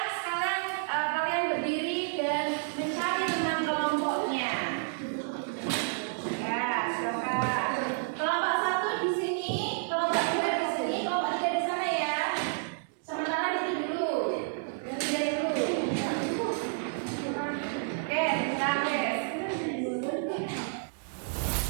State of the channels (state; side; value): silent; left; 58 dB below the other